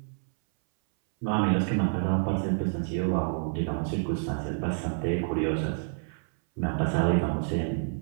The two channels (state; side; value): silent; left; 59 dB below the other